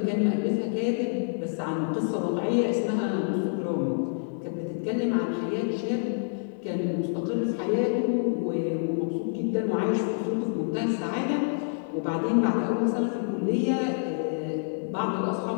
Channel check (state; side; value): silent; right; 60 dB below the other